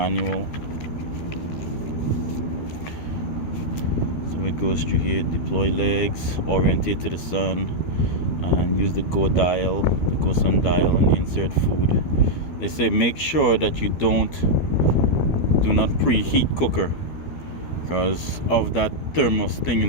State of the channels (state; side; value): late; right; 13 ms